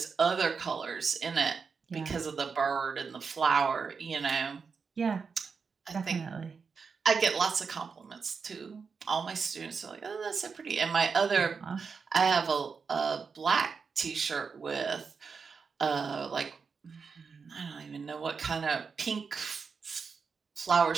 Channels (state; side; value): quieter; left; 5.4 dB